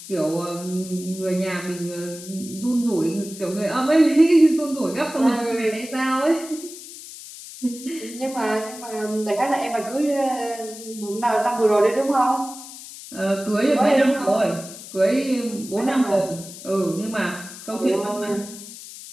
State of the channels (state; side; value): noise; left; hiss, 14 dB below the sound